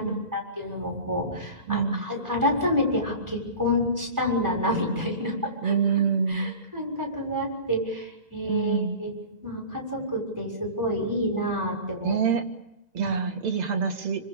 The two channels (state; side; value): late; left; 2.0 ms